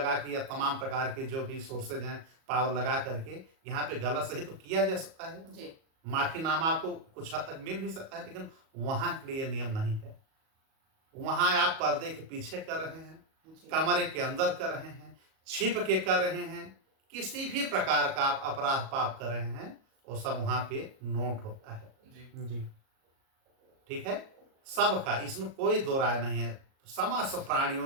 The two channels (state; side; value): late; left; 37 ms